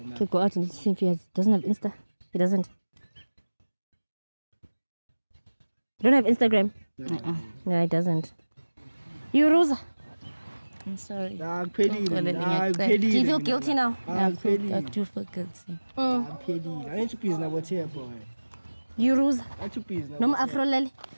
go out and see if he doesn't have Insta. He doesn't. You don't have Instagram? No, he doesn't. You, Rosa? I'm sorry. Do you feel guilty now? I do feel guilty. You, Rosa? No, Afro Lele.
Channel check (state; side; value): inverted; both; correlation -1.00